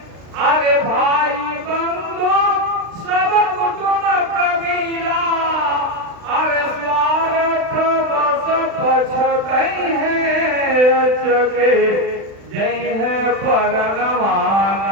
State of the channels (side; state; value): left; late; 36 ms